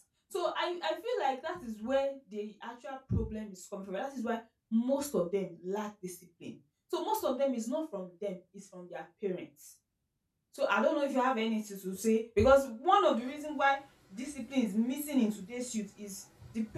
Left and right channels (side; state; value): both; identical; correlation 1.00